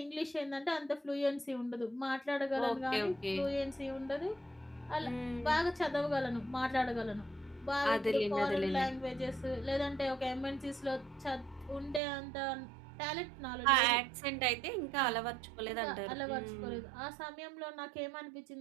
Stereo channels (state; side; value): drops out; left; at 12.0 s